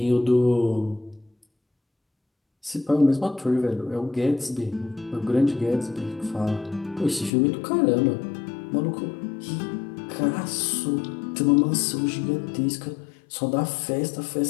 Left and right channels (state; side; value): drops out; right; at 7.3 s